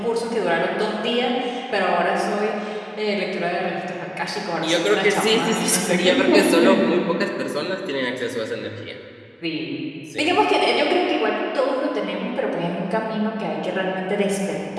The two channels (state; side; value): identical; both; correlation 1.00